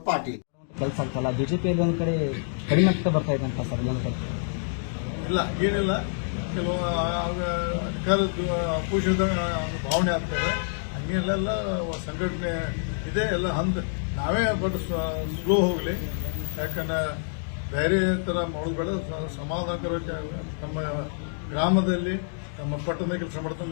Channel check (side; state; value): right; silent; digital silence